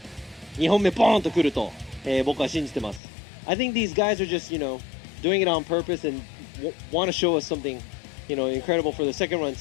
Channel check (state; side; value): drops out; right; at 3.0 s